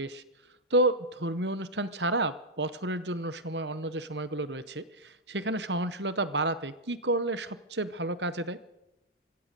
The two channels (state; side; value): normal; both; correlation -0.03